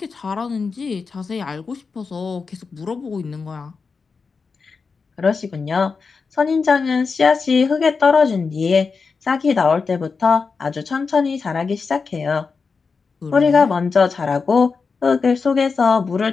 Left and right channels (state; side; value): quieter; right; 4.9 dB